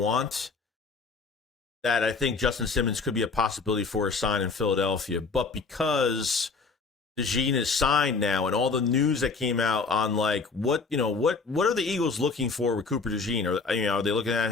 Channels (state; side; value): quieter; right; 4.4 dB